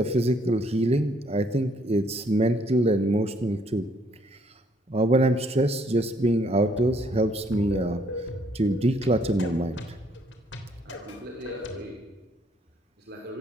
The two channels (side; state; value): both; normal; correlation 0.67